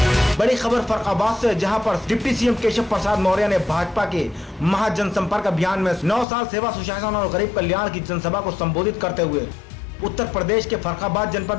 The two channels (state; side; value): drops out; right; at 6.2 s